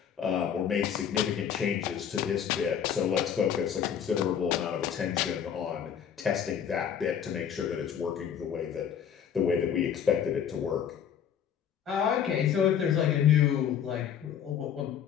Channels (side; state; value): right; quieter; 8.5 dB